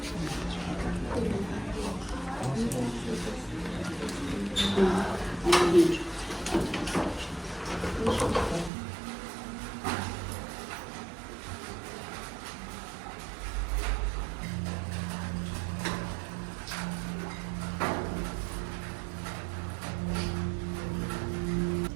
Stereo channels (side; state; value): left; drops out; at 8.7 s